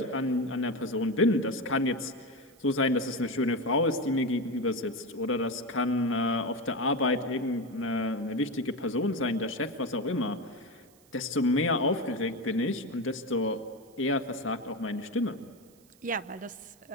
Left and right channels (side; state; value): right; noise; hiss, 29 dB below the sound